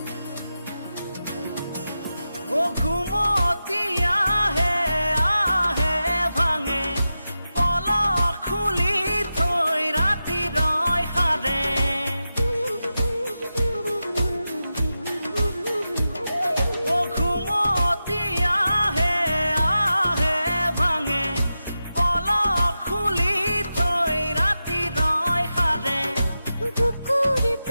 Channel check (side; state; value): both; inverted; correlation -0.92